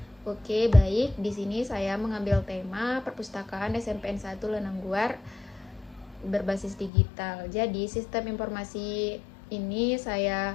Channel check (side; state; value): right; drops out; at 6.9 s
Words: Oke, baik. Di sini saya mengambil tema perpustakaan SMPN 1 Lenangguar berbasis digital. Jadi, sistem informasi ini